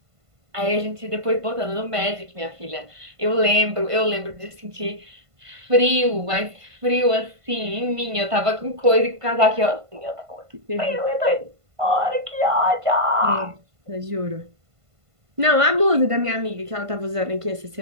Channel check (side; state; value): left; late; 1.5 ms